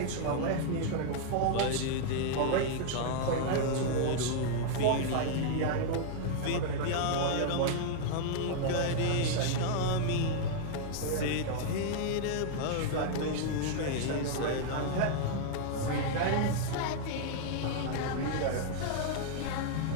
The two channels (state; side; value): different; both; correlation -0.01